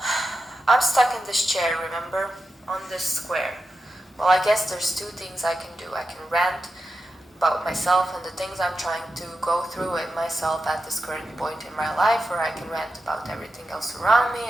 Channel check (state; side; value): normal; both; correlation 0.90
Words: I'm stuck in this chair, remember? On this square. Well, I guess there's two things I can do. I can rant about myself and the things I'm trying to go through with myself at this current point in my life, or I can rant about everything else around me.